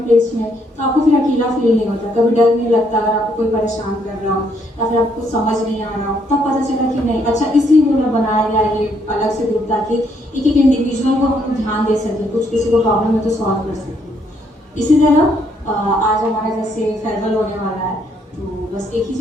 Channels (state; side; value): normal; both; correlation 0.71